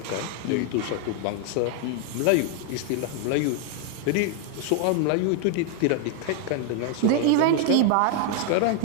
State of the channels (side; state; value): both; different; correlation 0.00